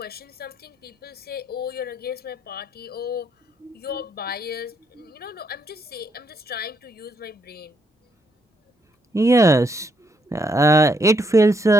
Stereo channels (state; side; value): normal; both; correlation 0.74